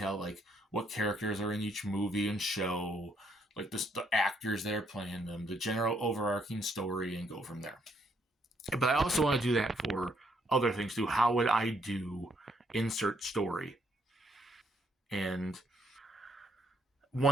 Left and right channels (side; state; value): both; normal; correlation 0.72